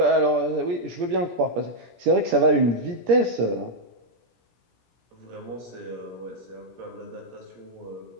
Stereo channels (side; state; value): left; late; 17 ms